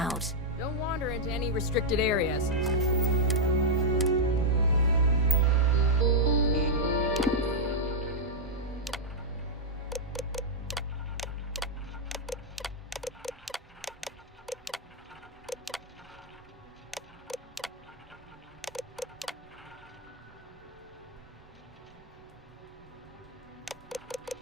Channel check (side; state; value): both; normal; correlation -0.06